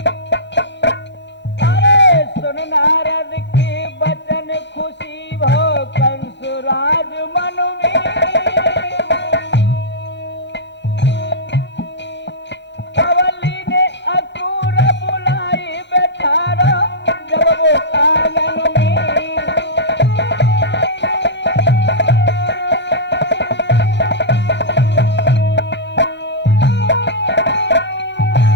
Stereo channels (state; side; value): late; right; 0.52 ms